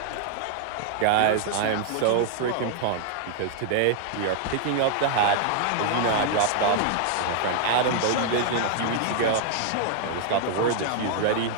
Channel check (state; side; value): different; both; correlation 0.00